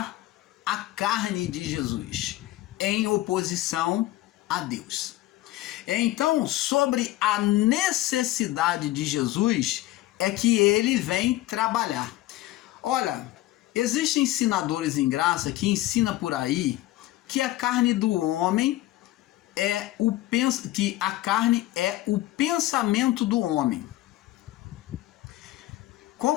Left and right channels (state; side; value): quieter; right; 16.2 dB